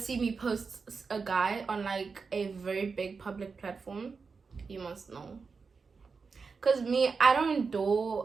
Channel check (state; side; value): quieter; left; 4.9 dB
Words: me post a guy on like a very big public platform, you must know. Cause me, I don't